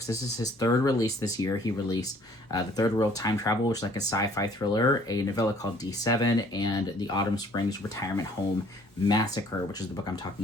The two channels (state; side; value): normal; both; correlation 0.58